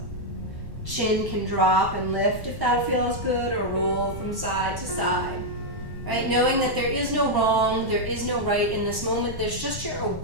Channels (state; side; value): late; left; 1.1 ms